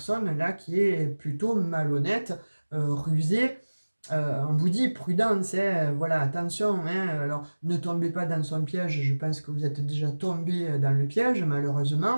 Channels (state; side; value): inverted; both; correlation -1.00